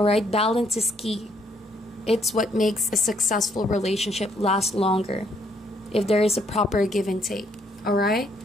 Balance is key. It's what makes a successful relationship last longer, if there is a proper give and take. Alright?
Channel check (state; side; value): normal; both; correlation 0.70